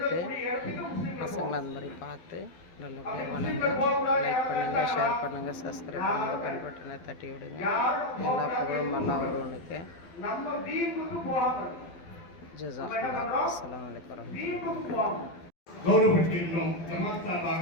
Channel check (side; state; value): right; late; 12 ms